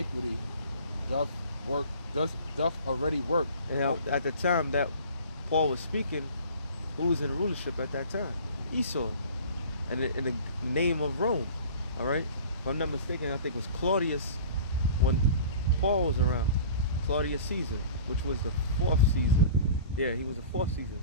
doth already work. And at the time that Paul was speaking, who was in rulership at that time? Esau, and in the name of Rome. All right, if I'm not mistaken, I think it was Claudius when Paul was around. Claudius Caesar, which was the 4th Caesar. Yeah, he was the 4th Caesar.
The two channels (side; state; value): both; inverted; correlation -0.43